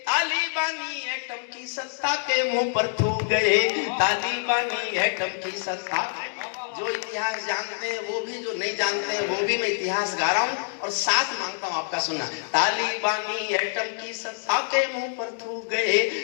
तालिबानी एटम की सत्ता के मुंह पर थूक गए, तालिबानी एटम की सत्ता। जो इतिहास जानते हैं वो भी, जो नहीं जानते हैं वो भी, मैं इतिहास गा रहा हूं और साथ मांगता हूं आपका सुनना। तालिबानी एटम की सत्ता के मुंह पर थूक गए,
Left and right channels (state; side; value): silent; right; digital silence